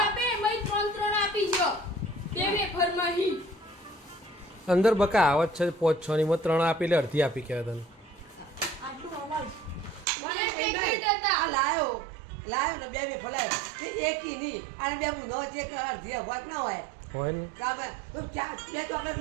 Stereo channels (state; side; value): drops out; left; at 10.1 s